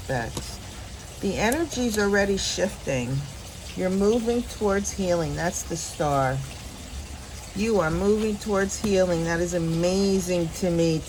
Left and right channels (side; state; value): both; identical; correlation 1.00